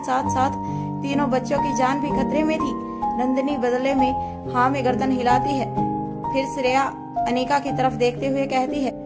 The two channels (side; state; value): both; identical; correlation 1.00